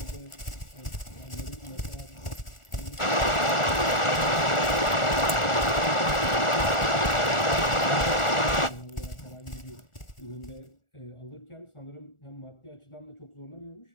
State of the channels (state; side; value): late; right; 1.4 ms